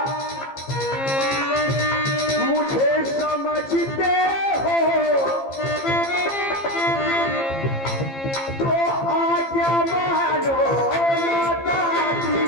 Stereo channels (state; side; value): late; right; 15 ms